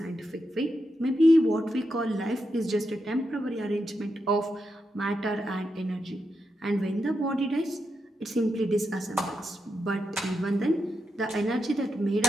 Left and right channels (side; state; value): both; normal; correlation 0.86